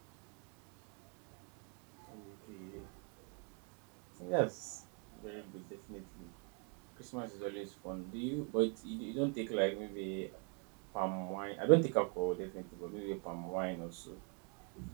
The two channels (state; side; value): quieter; left; 37.6 dB